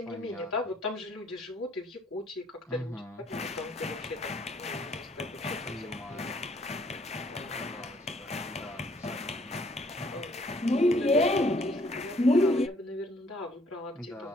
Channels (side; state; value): both; normal; correlation 0.64